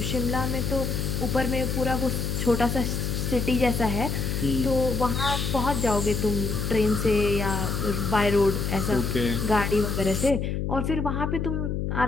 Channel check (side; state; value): left; noise; hum, 1 dB below the sound